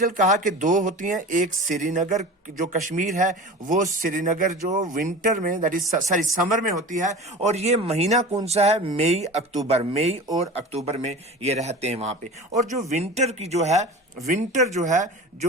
कहा कि दो होती हैं, एक श्रीनगर जो कश्मीर है वो श्रीनगर जो विंटर में दैट इज सॉरी समर में होती है, और ये महीना कौन सा है, मई अक्टूबर, मई और अक्टूबर में ये रहते हैं वहां पे। और जो विंटर की जो है विंटर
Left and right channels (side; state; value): both; normal; correlation 0.35